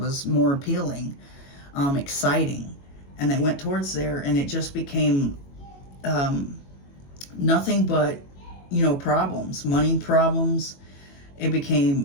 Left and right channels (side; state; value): right; late; 22 ms